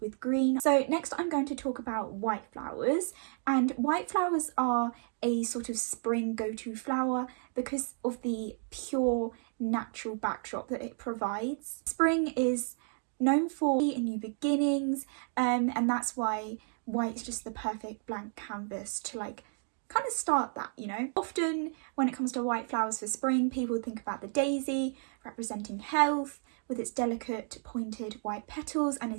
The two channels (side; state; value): left; silent; 56 dB below the other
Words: with green. So next I'm going to talk about white flowers, and white flowers are a sort of spring go-to flower because of the pure natural backdrop that it provides. Spring is known for new beginnings, and that's why white is just the perfect blank canvas to like kind of start that, you know. Often when it comes to white flowers for spring, people think about the daisy representing health with its delicate pointed white petals and